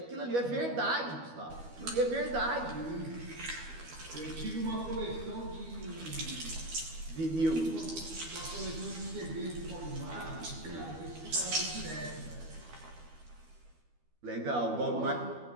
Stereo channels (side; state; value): left; late; 12 ms